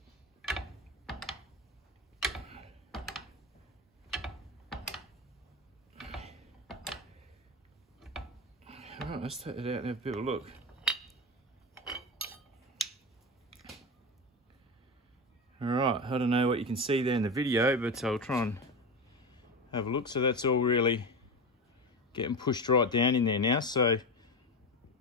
Alright, let's take it out and have a bit of a look. Alright, I don't know what you can see there in the video, but I'll try and have a look. So that's all really getting pushed right down in there now. So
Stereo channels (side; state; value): both; normal; correlation 0.20